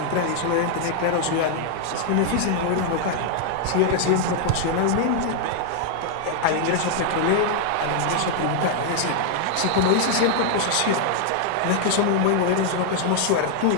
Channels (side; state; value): both; different; correlation 0.00